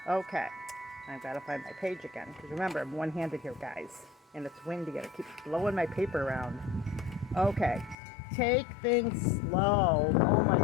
Okay, I've got to find my page again because remember, I'm one-handed here, guys, and it's windy and it keeps blowing my paper around. Okay, take things slow. Oh my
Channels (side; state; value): right; drops out; at 8.0 s